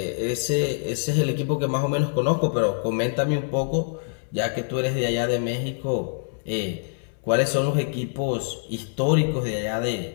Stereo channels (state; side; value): silent; right; digital silence